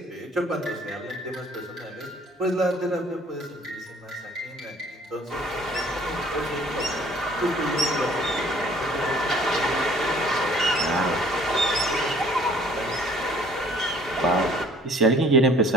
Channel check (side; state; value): both; normal; correlation 0.55